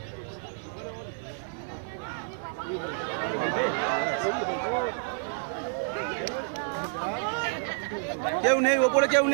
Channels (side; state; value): left; silent; digital silence